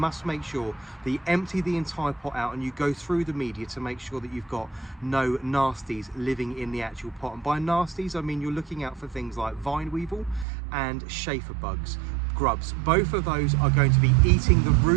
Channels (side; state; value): left; drops out; at 10.5 s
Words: make sure that you empty the entire pot out and you go through the media to make sure that you've got no nasties living in the actual pot. And by nasties, I mean you're looking out for things like vine weevil and chafer bugs, grubs. Both of those are going to be eating the